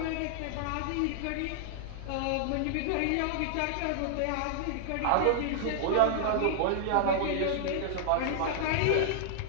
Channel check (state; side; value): different; both; correlation -0.01